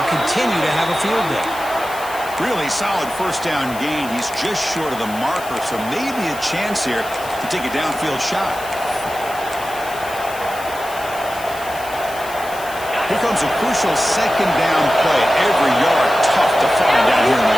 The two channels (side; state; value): left; noise; hiss, 15 dB below the sound